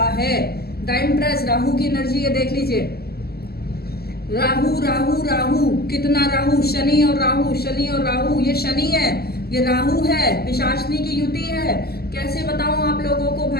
है। द एम्प्रेस, राहु की एनर्जी है, देख लीजिए, राहु राहु राहु, कितना राहु, शनि और राहु, शनि और राहु, ये शनि है, ये राहु है, पिशाचनी की युति है। कैसे बताऊं आप लोगों को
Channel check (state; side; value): late; right; 0.46 ms